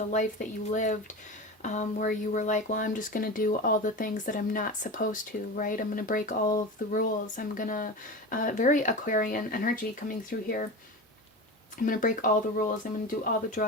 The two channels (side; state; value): both; normal; correlation 0.27